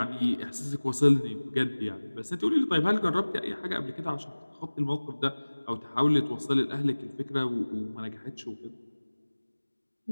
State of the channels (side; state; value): both; inverted; correlation -1.00